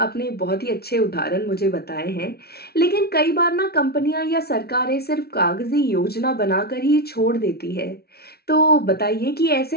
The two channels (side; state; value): right; late; 0.45 ms